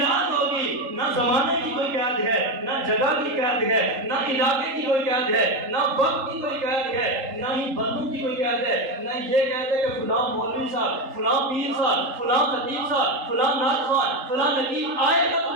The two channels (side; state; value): left; late; 3.8 ms